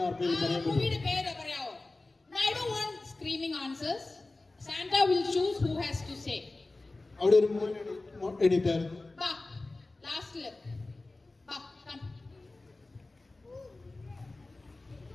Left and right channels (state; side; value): quieter; right; 3.1 dB